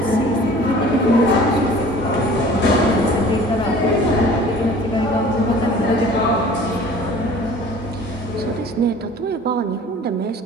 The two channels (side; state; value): both; normal; correlation 0.47